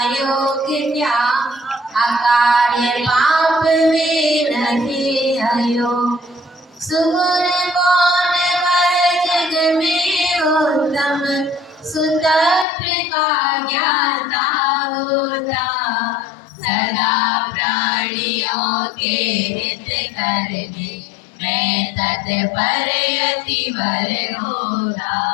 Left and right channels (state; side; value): drops out; right; at 12.7 s